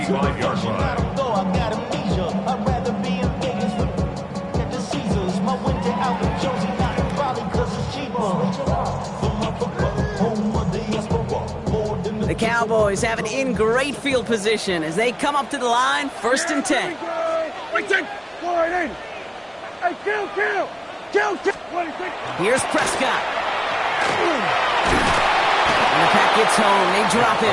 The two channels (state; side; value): identical; both; correlation 1.00